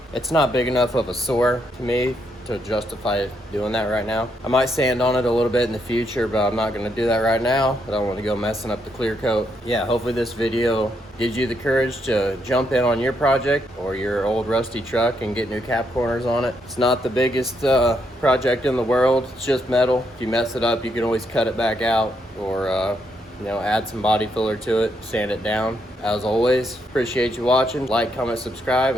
it's not big enough of a sore to me to justify doing that right now. I might sand on it a little bit in the future, but I'm not gonna do that right now. I don't want to go messing up the clear coat. Yeah, hopefully this video gives you the courage to jump in on your project or your old rusty truck and get new cap corners on it. It's not the biggest project in the world. It's just metal. If you mess it up, you can always cut it back out or add some body filler to it, sand it down. As always, appreciate you watching. Like, comment, subscribe,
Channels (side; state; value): both; normal; correlation 0.77